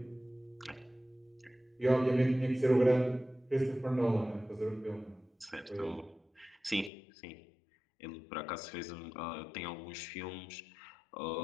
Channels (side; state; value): right; drops out; at 6.9 s